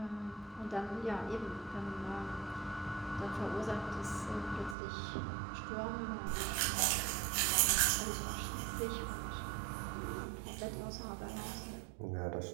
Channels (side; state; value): left; drops out; at 4.8 s